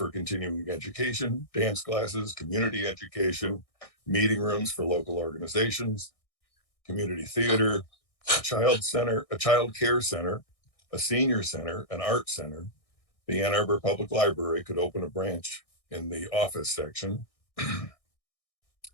continuing education, dance classes, community education, meeting rooms for local organizations, community theater, a child center, a child care center, a senior center, an art center. The Ann Arbor Public Library could open a branch in the office section.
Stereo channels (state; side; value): late; right; 1.6 ms